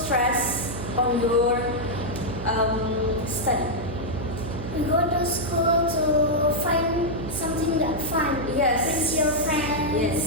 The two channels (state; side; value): noise; right; hum, 8 dB below the sound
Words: on your study. We go to school to find something that fun. Yes. With your friends.